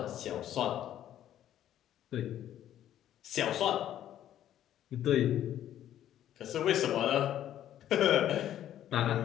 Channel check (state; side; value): quieter; right; 11.5 dB